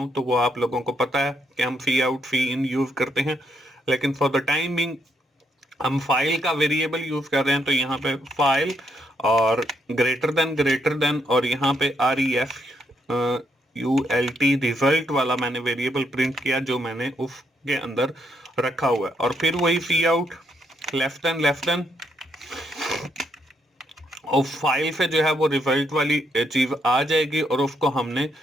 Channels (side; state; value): both; normal; correlation 0.76